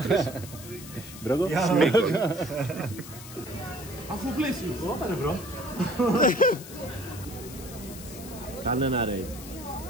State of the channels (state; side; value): noise; left; hiss, 15 dB below the sound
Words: Μπρόγκο. Σμίκος. Αφού πλαίσιο. Όπα ρε μπρο. Κάνε ένα raid.